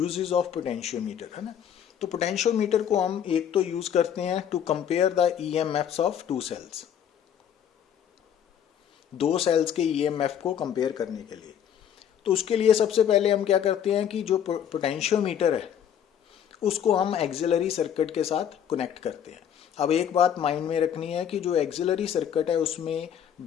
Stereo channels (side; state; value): right; quieter; 9.1 dB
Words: ऑफ पोटेंशियोमीटर है ना। तो पोटेंशियोमीटर को हम एक तो यूज करते हैं to compare the EMFs of two cells, दो सेल्स के ईएमएफ को कंपेयर करने के लिए। तो उसके लिए सबसे पहले हम क्या करते हैं कि जो पोटेंशियोमीटर है उसको हम एक्सिलरी सर्किट के साथ कनेक्ट करते हैं। अब एक बात माइंड में रखनी है कि जो एक्सिलरी सर्किट है उसमें